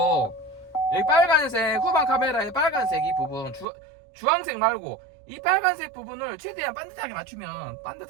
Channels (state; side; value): drops out; left; at 3.7 s